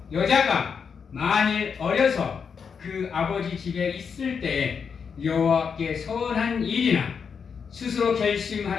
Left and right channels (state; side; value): quieter; right; 6.3 dB